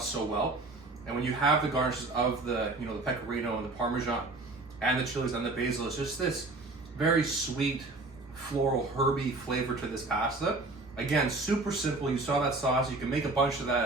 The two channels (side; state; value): left; quieter; 3.3 dB